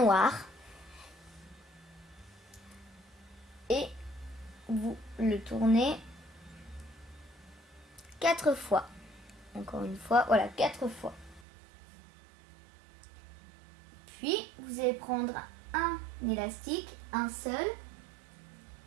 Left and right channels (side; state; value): left; drops out; at 11.5 s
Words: Et vous le tournez 4 fois. Encore une fois, voilà, 4 fois. Puis, vous allez prendre un élastique, un seul,